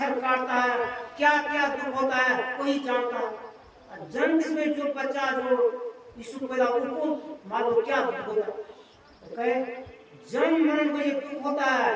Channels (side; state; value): both; identical; correlation 1.00